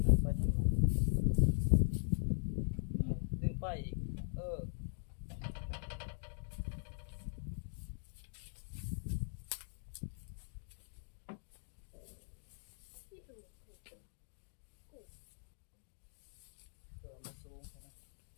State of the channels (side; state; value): right; silent; digital silence